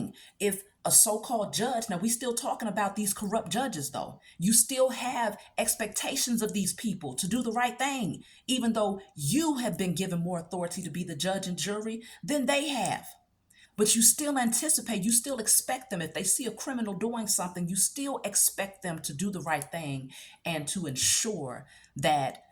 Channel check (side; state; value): both; identical; correlation 1.00